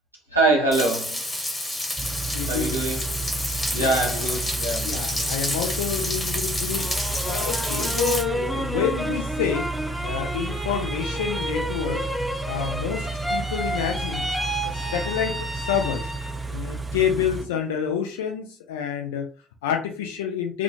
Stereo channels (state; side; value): normal; both; correlation 0.49